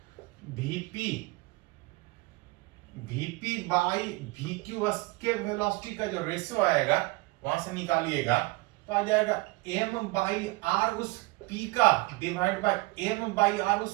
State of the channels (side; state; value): left; quieter; 23.1 dB